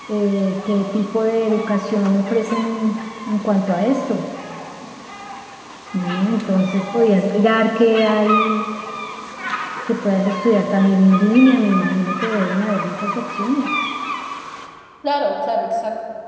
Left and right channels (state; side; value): identical; both; correlation 1.00